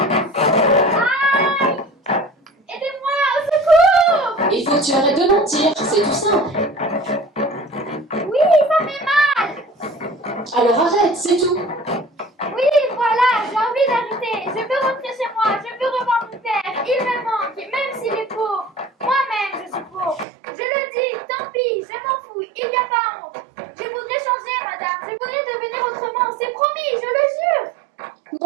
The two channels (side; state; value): left; drops out; at 20.2 s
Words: Aidez-moi, au secours! Il faut que tu arrêtes de mentir, c'est tout simple. Oui, ça fait mal. Alors arrête, c'est tout. Oui, voilà, j'ai envie d'arrêter. Je veux rentrer chez moi, je veux revoir mon père. Il me manque, même s'il est pauvre. Moi-même, je suis pauvre. Je le dis, tant pis, je m'en fous, il n'y a pas honte. Je voudrais changer, madame. Je voudrais devenir autrement. C'est promis, je le jure.